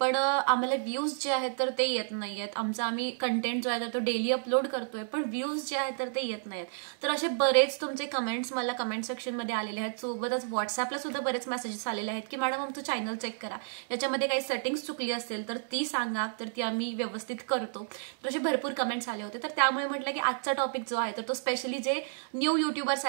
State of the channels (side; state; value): left; silent; digital silence